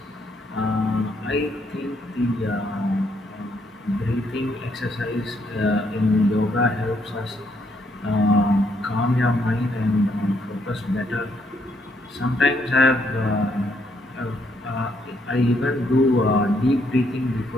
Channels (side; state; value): both; normal; correlation 0.73